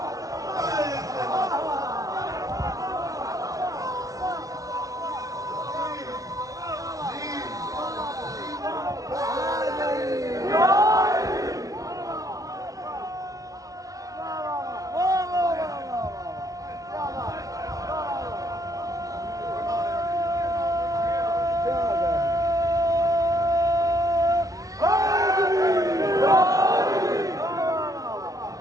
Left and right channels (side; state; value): left; late; 0.17 ms